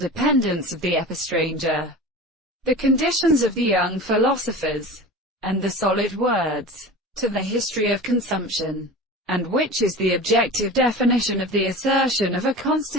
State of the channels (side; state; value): both; normal; correlation 0.33